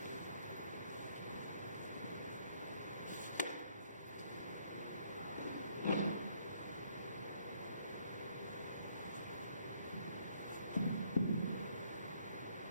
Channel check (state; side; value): inverted; both; correlation -0.67